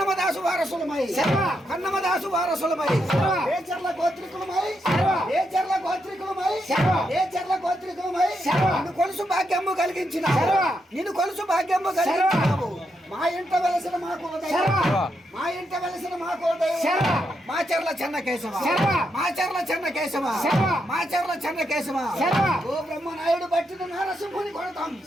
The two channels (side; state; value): both; normal; correlation 0.81